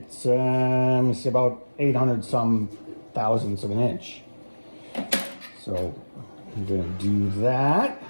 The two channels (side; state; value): both; inverted; correlation -1.00